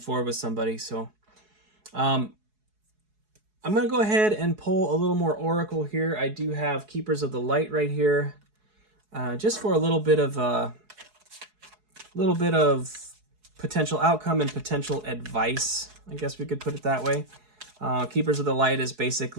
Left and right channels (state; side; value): late; left; 4.7 ms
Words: forward with somebody. So I'm going to go ahead and pull a little more oracle here. I do have Keepers of the Light right here, just for a little bit of potential outcome and potential advice. I guess we could put it that way. Keepers of the Light is